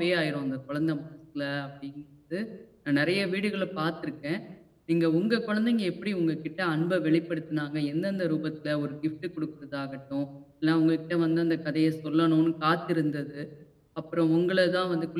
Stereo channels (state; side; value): identical; both; correlation 1.00